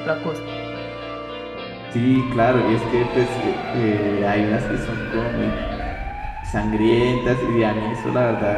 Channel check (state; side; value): identical; both; correlation 1.00